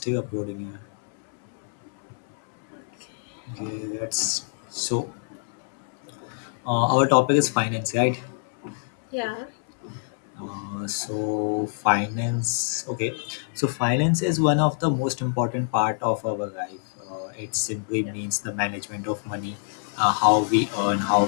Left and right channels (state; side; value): silent; right; 61 dB below the other